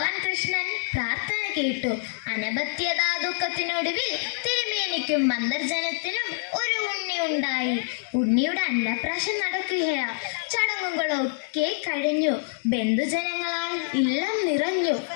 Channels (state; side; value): silent; right; digital silence